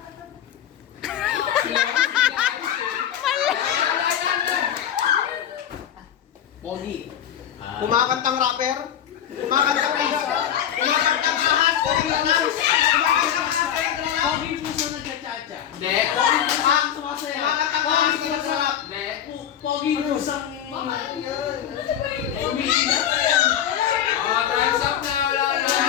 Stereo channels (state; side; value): quieter; right; 10.0 dB